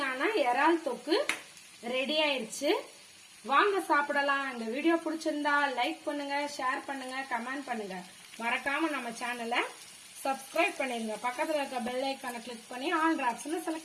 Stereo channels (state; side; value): identical; both; correlation 1.00